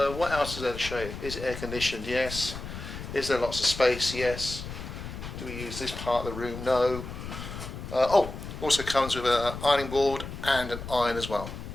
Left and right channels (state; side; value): noise; left; rumble, 9 dB below the sound